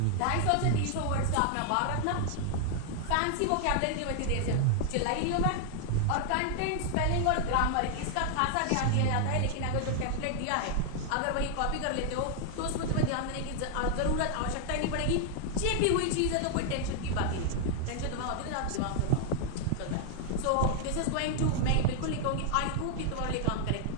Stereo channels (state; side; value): different; both; correlation 0.00